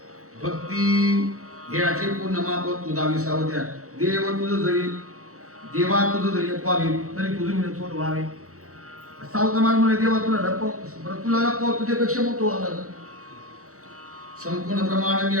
भक्ती देहाचे पूर्ण माप तुझा विसावत्या देव तुझं जरी देवा तुझं जरी लपवावे तरी तुझं मी थोड व्हावे. सावता मान म्हणे देवा तुला लपव तुला लपव तुझ्यापेक्षा मोठं व्हावं. संपूर्ण प्रमाण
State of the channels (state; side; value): late; left; 0.65 ms